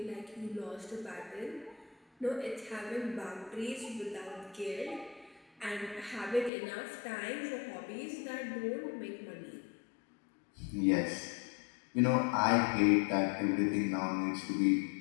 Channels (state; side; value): drops out; right; at 6.5 s